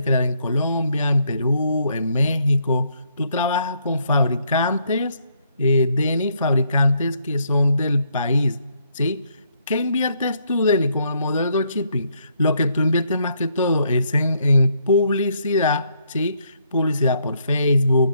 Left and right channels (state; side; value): inverted; both; correlation -0.72